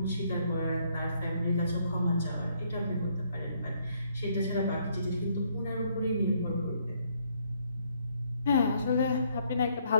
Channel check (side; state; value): both; inverted; correlation -0.69